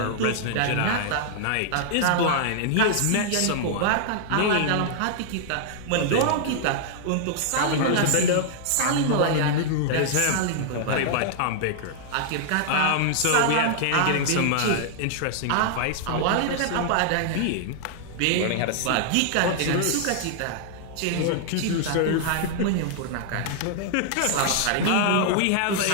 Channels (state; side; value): different; both; correlation -0.01